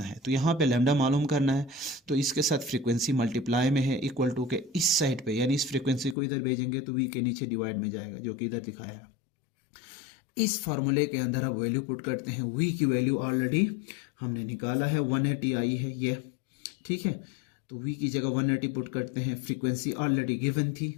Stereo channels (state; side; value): drops out; right; at 6.2 s